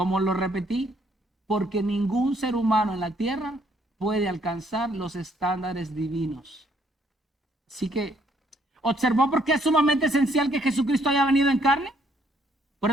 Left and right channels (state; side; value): normal; both; correlation 0.68